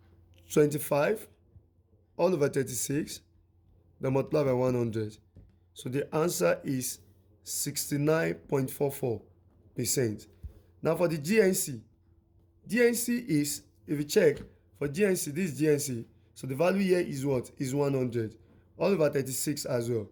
25 all over 36, then multiply by 100. So the answer is 69.44%. Now for the GNC is, if you check, for GNC, this is GNC. So the value here is what? Is 100. All over 36 as well.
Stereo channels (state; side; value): identical; both; correlation 1.00